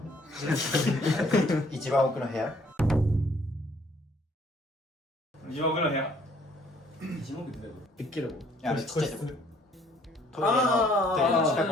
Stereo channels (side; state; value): both; normal; correlation 0.62